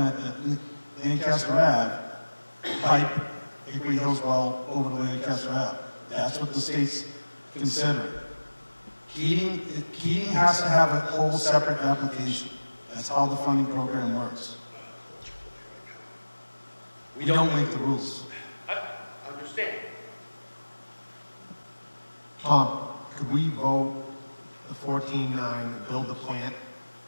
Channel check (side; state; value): both; inverted; correlation -1.00